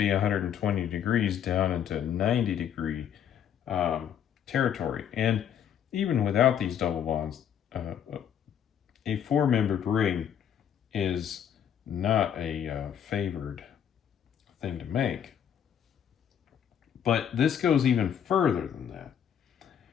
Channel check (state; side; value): quieter; right; 9.0 dB